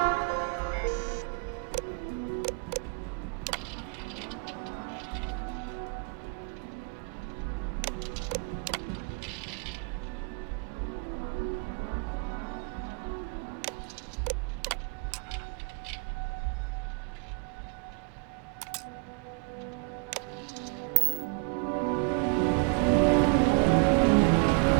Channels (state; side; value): quieter; left; 34.9 dB